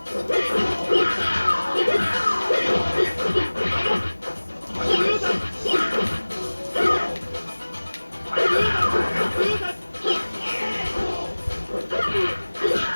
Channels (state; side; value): inverted; both; correlation -1.00